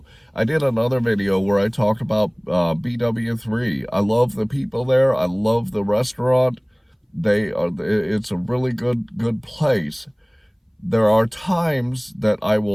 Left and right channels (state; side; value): identical; both; correlation 1.00